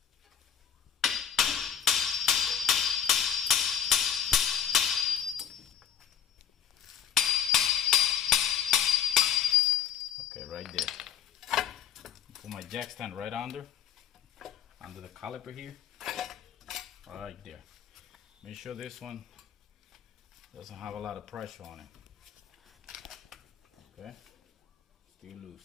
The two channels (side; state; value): right; quieter; 8.5 dB